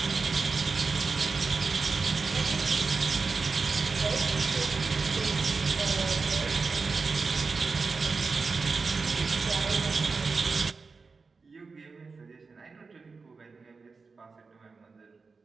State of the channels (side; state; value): left; quieter; 4.5 dB